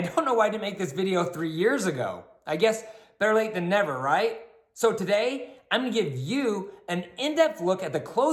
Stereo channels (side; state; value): both; identical; correlation 1.00